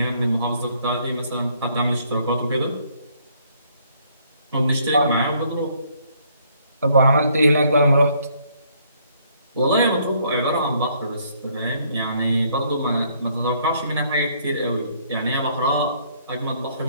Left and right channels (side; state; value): both; inverted; correlation -0.66